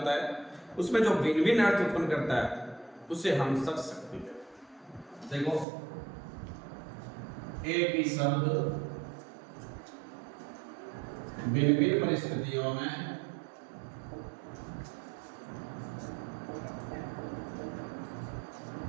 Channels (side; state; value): left; drops out; at 5.7 s